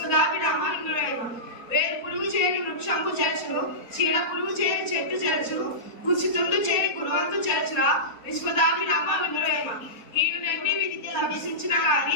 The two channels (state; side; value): late; right; 4.1 ms